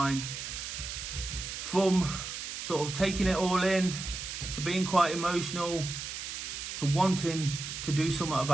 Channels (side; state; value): right; noise; hiss, 6 dB below the sound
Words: from sort of taking it all in, to being quite emotional, to wanting to do something